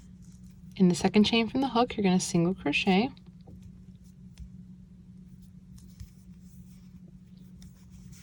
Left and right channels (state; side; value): identical; both; correlation 1.00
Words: In the second chain from the hook, you're going to single crochet.